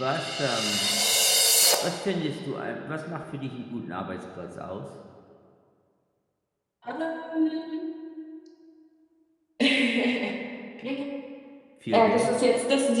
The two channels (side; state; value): both; identical; correlation 1.00